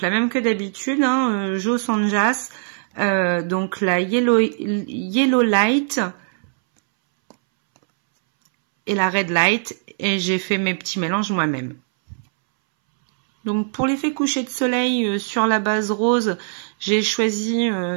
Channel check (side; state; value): left; silent; 64 dB below the other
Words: la même que d'habitude, hein, Joe Sanjas, donc la Yellow Light et la Red Light, et j'ai fait mes petits mélanges moi-même. Donc pour l'effet coucher de soleil sur la base rose, j'ai choisi